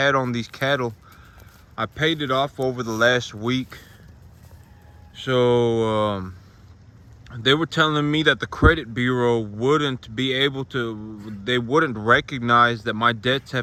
on these cattle, I paid it off over the last week. So they were telling me that the credit bureau wouldn't be able to, they wouldn't recognize that my debts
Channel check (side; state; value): both; identical; correlation 1.00